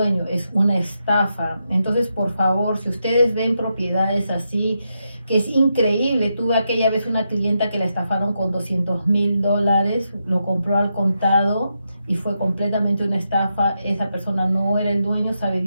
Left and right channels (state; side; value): inverted; both; correlation -0.84